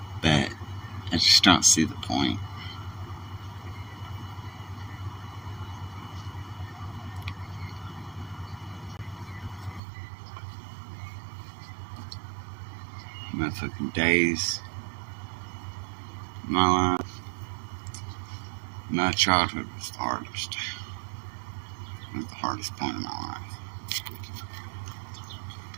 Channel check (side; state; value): left; drops out; at 9.8 s